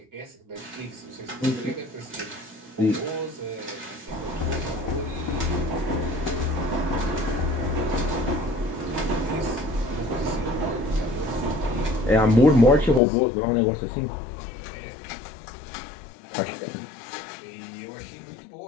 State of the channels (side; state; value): right; drops out; at 13.0 s